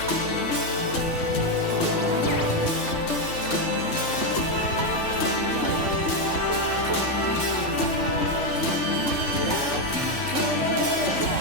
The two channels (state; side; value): late; right; 3.4 ms